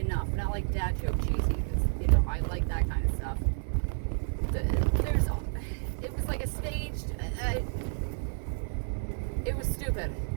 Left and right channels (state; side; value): silent; left; digital silence